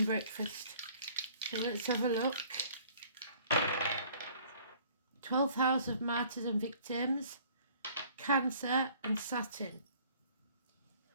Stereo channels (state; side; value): inverted; both; correlation -0.55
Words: breakfast. So let's have a look. 12th house of martyrs and victims, Cancer and Saturn.